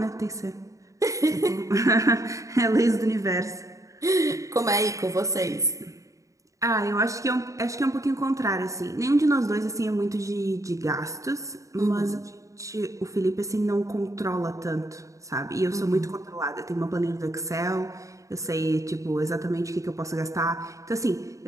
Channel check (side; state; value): left; late; 0.16 ms